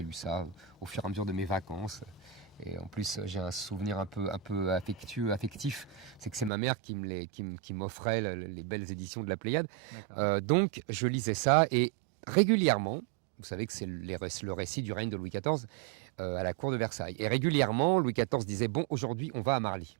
lu ça au fur et à mesure de mes vacances. Et en plus, j'ai un souvenir un peu affectif. C'est que c'est ma mère qui m'offrait les belles éditions de la Pléiade. Donc, je lisais ça et régulièrement, vous savez que c'est le récit du règne de Louis XIV à la cour de Versailles. Et régulièrement, Louis XIV disait « Bon, aujourd'hui, on va à Marly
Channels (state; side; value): drops out; left; at 6.5 s